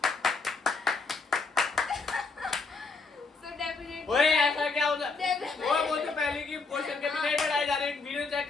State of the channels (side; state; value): right; quieter; 4.2 dB